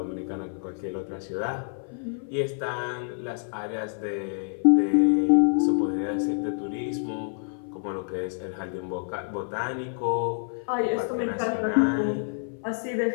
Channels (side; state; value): right; silent; 56 dB below the other